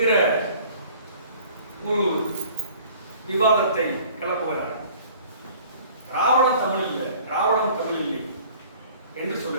ஒரு விவாதத்தை கிளப்புகிறார். திராவிடம் தமிழ் இல்லை, திராவிடம் தமிழ் இல்லை என்று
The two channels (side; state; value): both; inverted; correlation -0.51